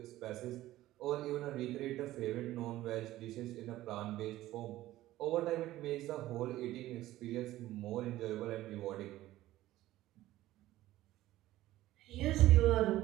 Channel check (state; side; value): quieter; left; 15.4 dB